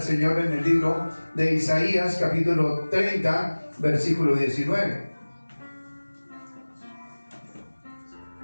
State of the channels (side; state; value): both; inverted; correlation -1.00